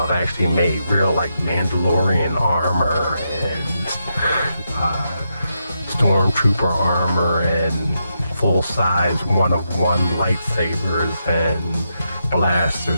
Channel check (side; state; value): both; inverted; correlation -0.83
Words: actually made real like Mandalorian armor and Stormtrooper armor and full-size one-of-one lightsabers and